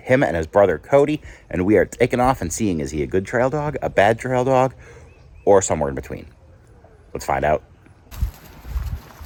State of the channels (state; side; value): identical; both; correlation 1.00